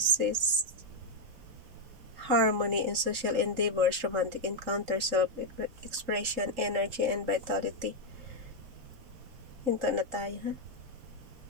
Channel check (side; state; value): left; late; 3.8 ms